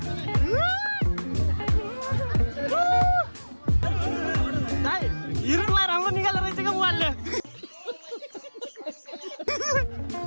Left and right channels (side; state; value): both; inverted; correlation -1.00